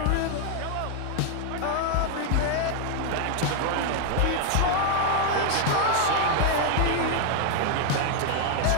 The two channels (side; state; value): both; different; correlation 0.00